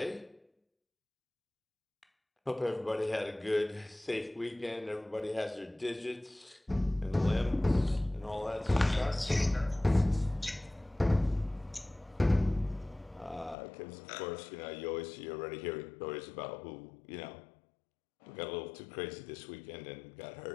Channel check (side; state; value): right; drops out; at 13.6 s